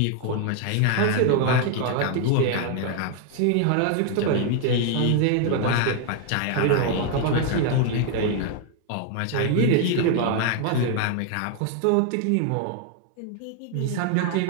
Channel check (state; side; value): different; both; correlation 0.00